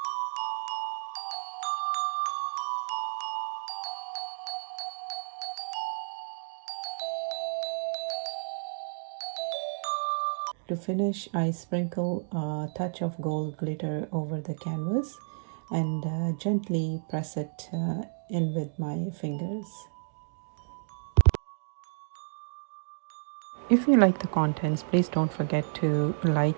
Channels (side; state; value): left; silent; digital silence